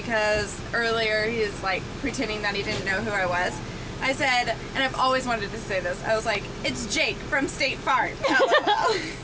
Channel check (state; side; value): identical; both; correlation 1.00